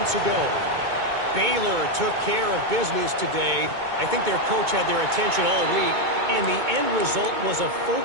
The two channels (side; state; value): left; late; 2.2 ms